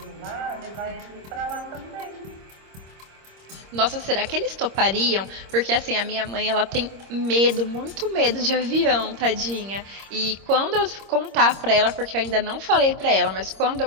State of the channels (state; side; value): late; left; 26 ms